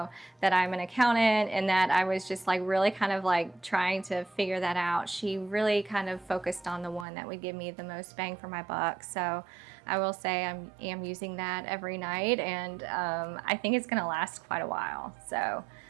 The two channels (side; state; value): left; drops out; at 7.1 s